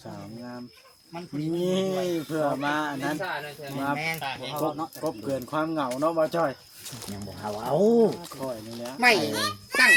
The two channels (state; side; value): identical; both; correlation 1.00